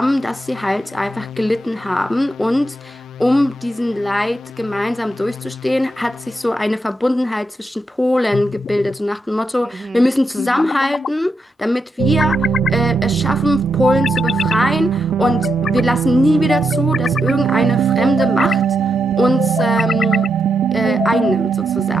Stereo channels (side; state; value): both; normal; correlation 0.84